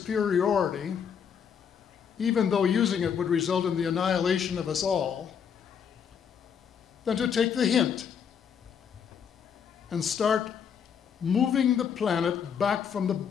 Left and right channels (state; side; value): quieter; right; 7.4 dB